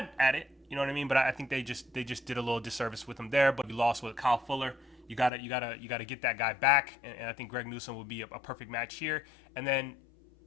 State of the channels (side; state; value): right; drops out; at 5.3 s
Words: at it, you know what I mean. But I think they just did a little disservice with him there. But you lost with Kyle Fuller. You gotta get that guy back, and I think Greg Newsome would be a perfect match here. And then,